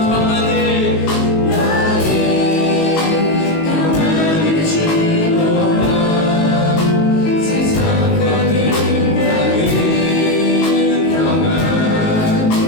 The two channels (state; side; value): late; right; 19 ms